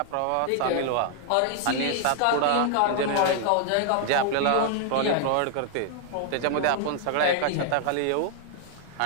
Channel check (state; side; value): different; both; correlation 0.00